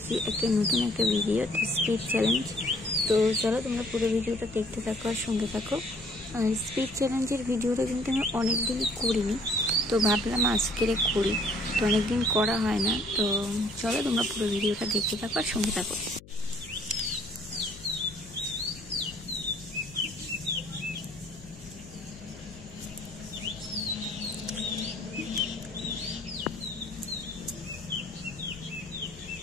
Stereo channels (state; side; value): noise; left; hum, 20 dB below the sound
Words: একটা নতুন ভিডিও, স্পিড চ্যালেঞ্জ। তো চলো তোমরা পুরো ভিডিওটা দেখতে থাকো আর সঙ্গে থাকো। আর স্পিড চ্যালেঞ্জের ভিডিওটা কিন্তু আমি অনেক দিনই করিনি, তো ভাবলাম আজকের করি। তো অনেক দিন করা হয় না, তো চলো তোমরা পুরো ভিডিওটা দেখতে থাকো আর সঙ্গে থাকো।